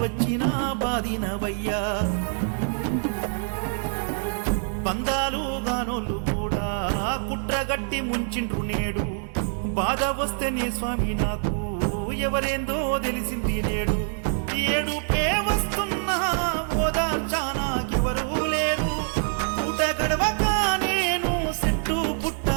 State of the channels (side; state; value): left; silent; digital silence